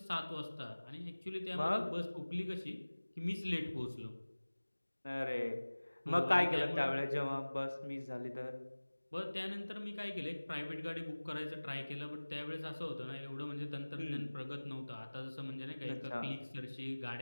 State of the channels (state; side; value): inverted; both; correlation -1.00